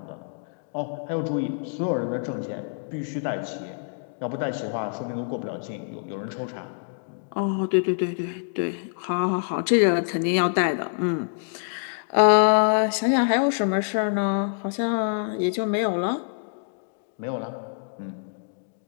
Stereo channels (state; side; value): silent; right; digital silence